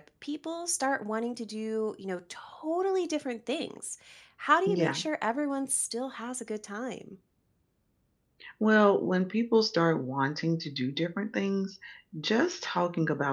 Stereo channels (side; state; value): both; identical; correlation 1.00